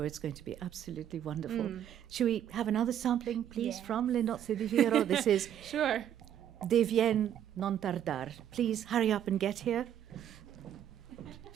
it's going to be absolutely wonderful. Should we have another sampling, please, from Le Nozze di Figaro? This is Sure. Devien non tardar. Please hurry up and get here.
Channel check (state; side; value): quieter; left; 10.2 dB